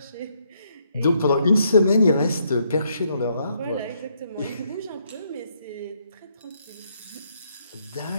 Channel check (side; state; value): both; inverted; correlation -0.74